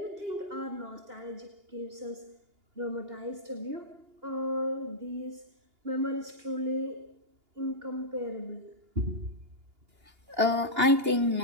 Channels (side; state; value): left; late; 2.8 ms